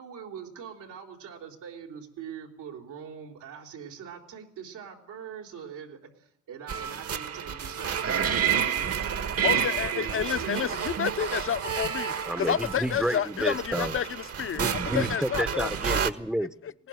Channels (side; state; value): both; normal; correlation 0.12